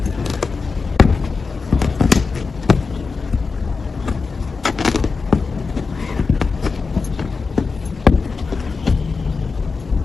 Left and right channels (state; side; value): quieter; right; 4.6 dB